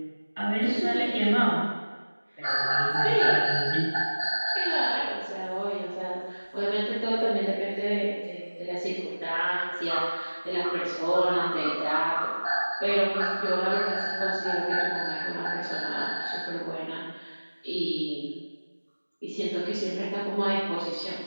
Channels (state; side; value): inverted; both; correlation -1.00